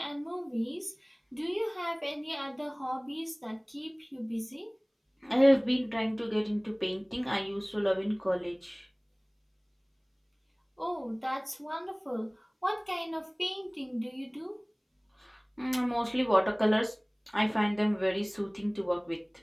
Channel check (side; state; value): both; identical; correlation 1.00